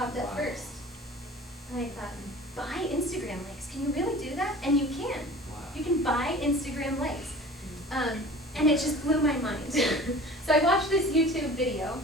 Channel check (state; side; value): normal; both; correlation 0.42